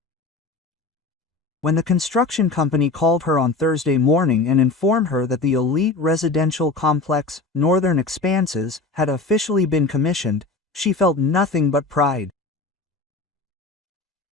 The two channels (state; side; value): quieter; right; 3.6 dB